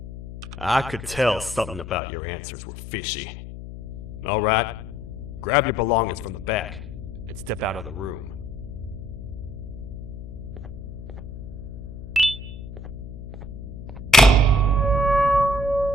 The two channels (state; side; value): noise; left; hum, 11 dB below the sound